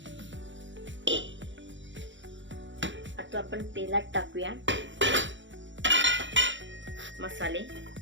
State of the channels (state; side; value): late; left; 0.54 ms